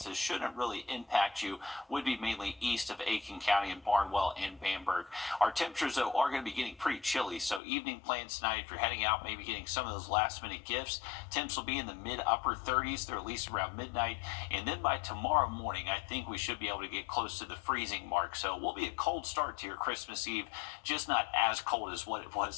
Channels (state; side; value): drops out; right; at 7.6 s